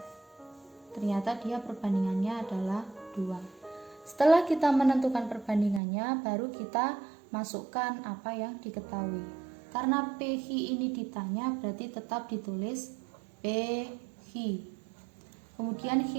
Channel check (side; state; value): left; drops out; at 5.8 s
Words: Ternyata dia perbandingannya adalah 2. Setelah kita menentukan perbandingannya, baru kita masukkan apa yang diketahui. Karena PQ ini ditanya, berarti tetap ditulis PQ. Kemudian